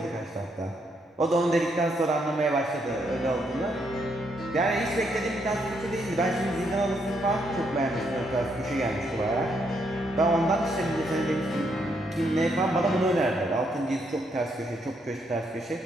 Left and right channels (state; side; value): normal; both; correlation 0.75